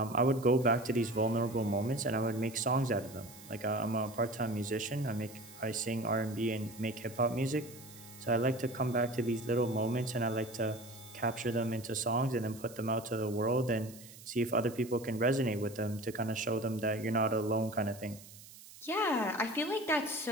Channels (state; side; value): noise; right; hiss, 18 dB below the sound